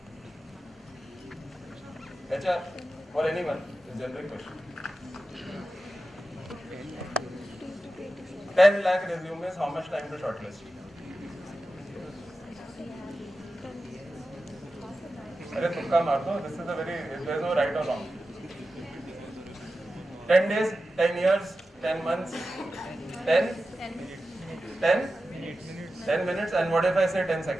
HR or anyone? It's a generic question. 10 lakh resumes, how much time to shortlist? Arey tukka maar do. This is a very, there's no right or wrong. 10 days, 10 years, 10 months, 10? 10? 10 minutes, and what if I say 10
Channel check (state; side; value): normal; both; correlation 0.93